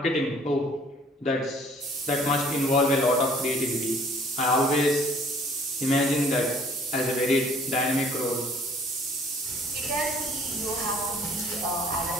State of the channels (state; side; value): normal; both; correlation 0.56